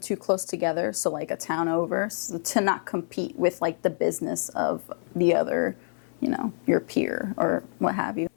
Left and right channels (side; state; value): right; silent; 60 dB below the other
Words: close together, so like a town over, so to not compete with like the business of the other, you know, your peer or what have you.